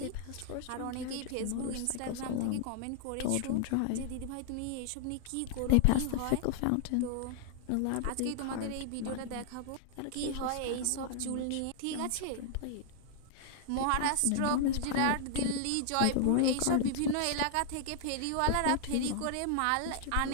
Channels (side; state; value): both; different; correlation -0.01